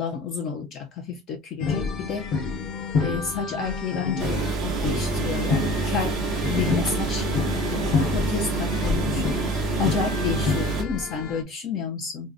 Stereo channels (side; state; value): both; normal; correlation 0.43